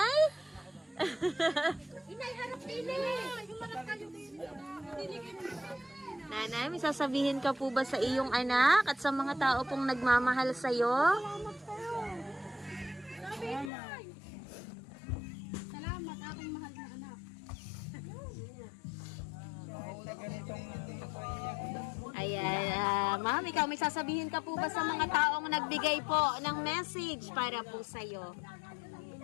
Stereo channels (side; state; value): right; drops out; at 13.7 s